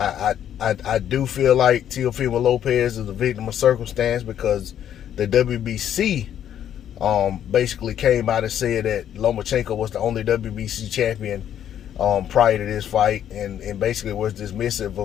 do feel like Teofimo Lopez is a victim of circumstance, because the WBC basically came out and said that Lomachenko was the only WBC champion prior to this fight, and basically was dismissive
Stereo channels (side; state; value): right; quieter; 10.2 dB